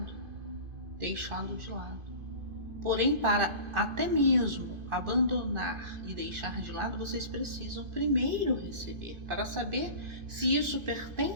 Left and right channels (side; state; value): left; late; 2.5 ms